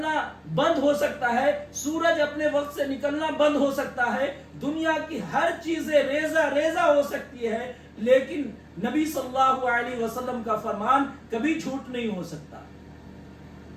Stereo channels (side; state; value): both; identical; correlation 1.00